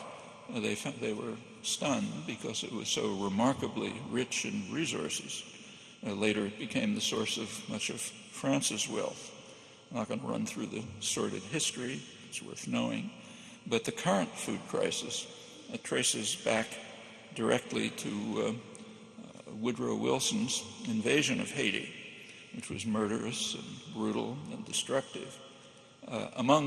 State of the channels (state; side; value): identical; both; correlation 1.00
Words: they were stunned because it was so remarkably rich in resources. Later it became the source of much of France's wealth. I'm not going to run through the sordid history, it's worth knowing. But the current food crisis traces back directly to Woodrow Wilson's invasion of Haiti, which was murderous and brutal and destructive.